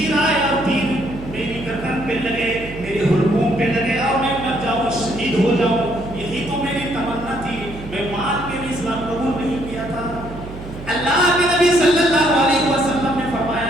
ہو جاؤں، یہی تو میری تمنا تھی، میں مال کے لیے اسلام قبول نہیں کیا تھا۔ اللہ کے نبی صلی اللہ علیہ وسلم نے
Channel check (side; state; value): right; noise; hum, 13 dB below the sound